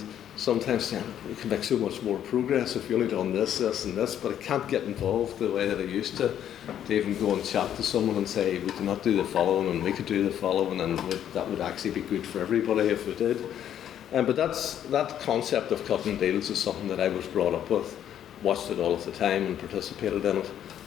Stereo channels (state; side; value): quieter; right; 10.3 dB